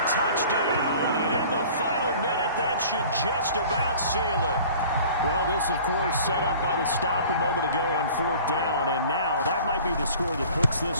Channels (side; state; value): both; inverted; correlation -0.46